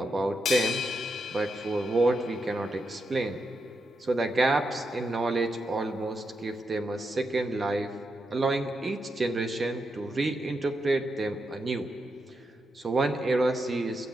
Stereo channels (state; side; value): normal; both; correlation 0.84